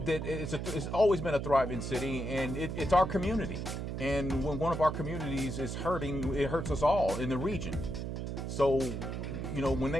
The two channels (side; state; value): right; noise; hum, 4 dB below the sound